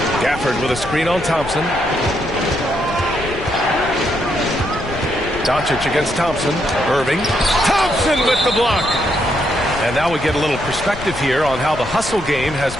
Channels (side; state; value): left; noise; rumble, 12 dB below the sound